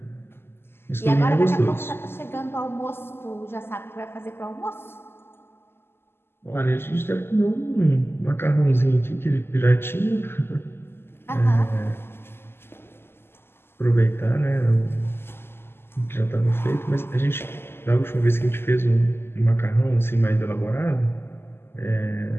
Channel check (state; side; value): late; right; 0.11 ms